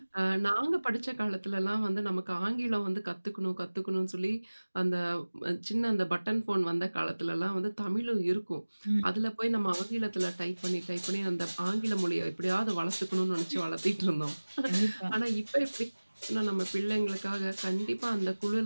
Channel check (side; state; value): both; inverted; correlation -1.00